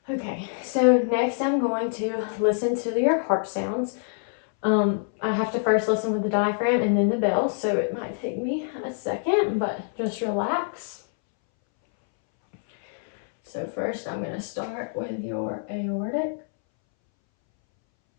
Okay, so next I'm going to listen to your heart sounds. I have to first listen with the diaphragm and then the bell, so it might take me a second, but just relax. So first I'm going to start with your aortic,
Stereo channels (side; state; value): right; silent; 61 dB below the other